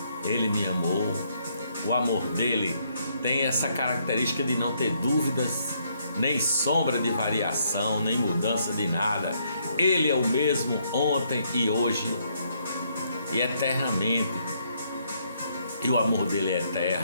Ele me amou. O amor dele tem essa característica de não ter dúvidas, nem sombra de variação, nem mudança de nada. Ele é o mesmo ontem e hoje e eternamente. E o amor dele é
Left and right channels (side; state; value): both; inverted; correlation -0.71